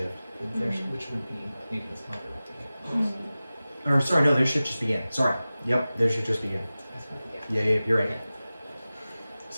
Which would be maybe this month. Or sorry, no, their shift just began. Sorry. Yep, their shift just began. Yeah, you're right. It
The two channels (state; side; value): inverted; both; correlation -0.96